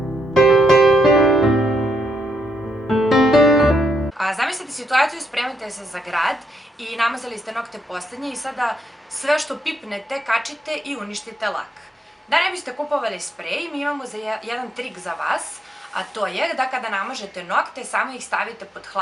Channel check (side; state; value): both; normal; correlation 0.78